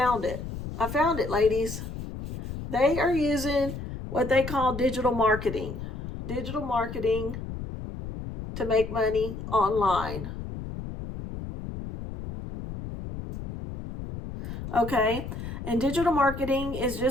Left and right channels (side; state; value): left; noise; rumble, 8 dB below the sound